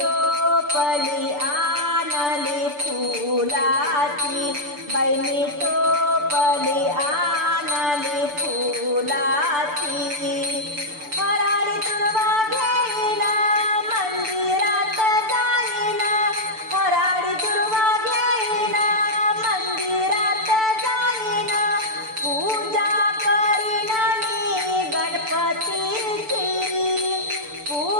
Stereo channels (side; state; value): left; late; 6.8 ms